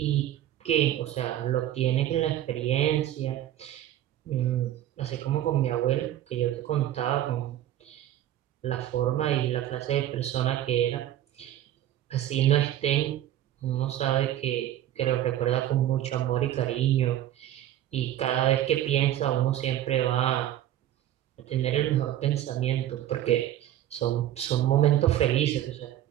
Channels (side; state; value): left; quieter; 12.4 dB